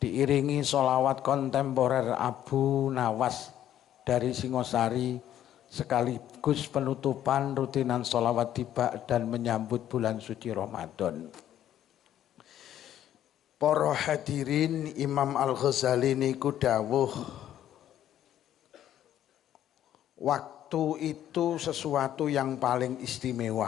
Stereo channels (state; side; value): quieter; right; 11.4 dB